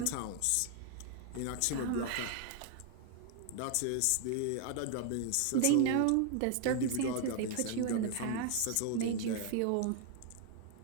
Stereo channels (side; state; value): both; different; correlation 0.00